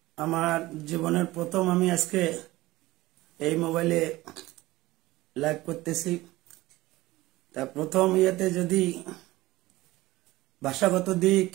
আমার জীবনের প্রথম আমি আজকে এই মোবাইলে লাইভ করতেছি। তা প্রথম ইয়েতে যদি ভাষাগত দিক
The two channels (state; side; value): quieter; left; 18.4 dB